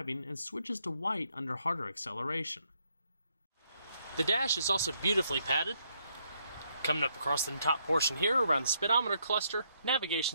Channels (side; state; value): both; inverted; correlation -0.74